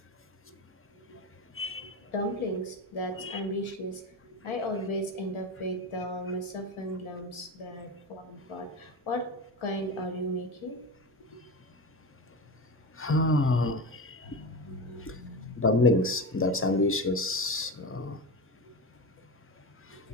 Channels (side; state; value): both; normal; correlation 0.23